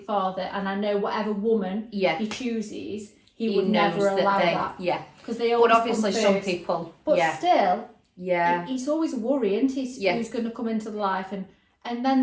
father, and I know whatever woman yeah. he chooses, he would knows never allow that. Yeah, Because they but always obviously come some first. people, But yeah, still, yeah, it's always a worry, isn't it? Yeah. Who's going to come into the life, and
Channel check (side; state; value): both; identical; correlation 1.00